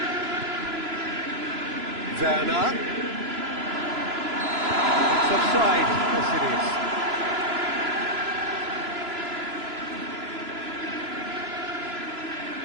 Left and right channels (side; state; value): left; late; 3.0 ms